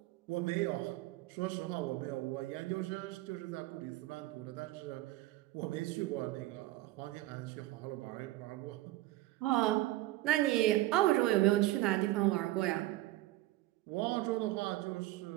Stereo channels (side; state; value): left; quieter; 16.8 dB